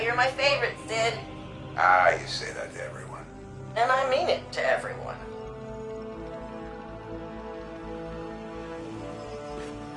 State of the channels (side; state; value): both; identical; correlation 1.00